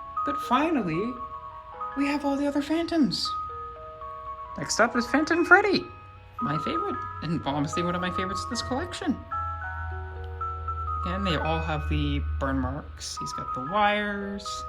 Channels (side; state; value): both; identical; correlation 1.00